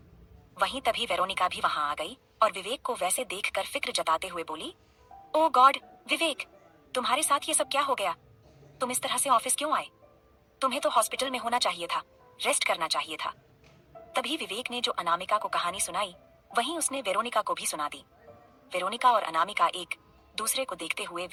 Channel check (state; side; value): identical; both; correlation 1.00